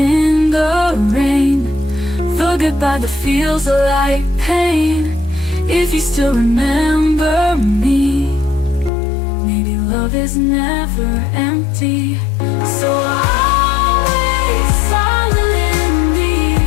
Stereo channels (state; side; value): drops out; right; at 8.9 s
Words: the rain, the goodbye that feels like pain. If you still remember me, maybe love is never empty. So always silently,